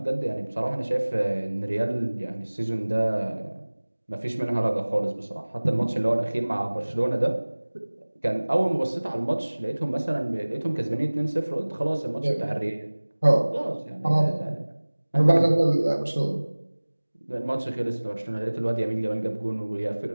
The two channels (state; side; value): inverted; both; correlation -1.00